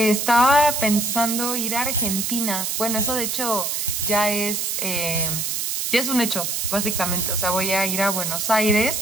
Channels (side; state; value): right; noise; hiss, 1 dB below the sound